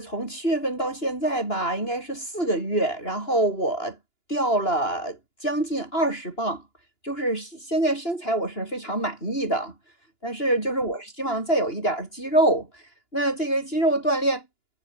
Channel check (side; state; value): right; late; 2.9 ms